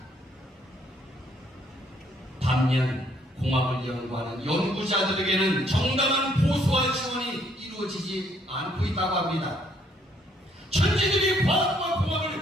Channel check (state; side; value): normal; both; correlation 0.67